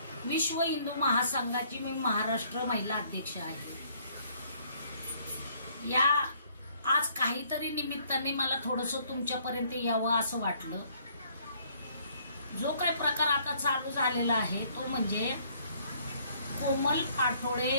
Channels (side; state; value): both; inverted; correlation -0.63